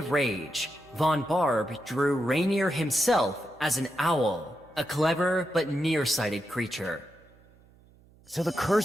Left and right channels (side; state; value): right; noise; hum, 28 dB below the sound